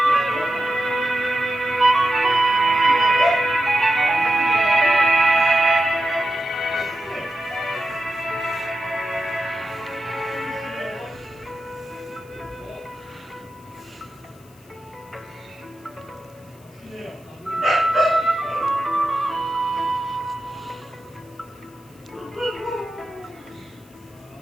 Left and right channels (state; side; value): noise; left; hiss, 29 dB below the sound